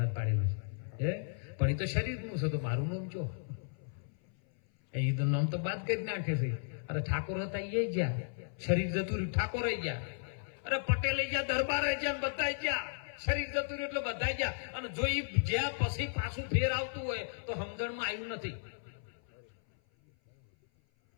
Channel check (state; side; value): silent; right; 55 dB below the other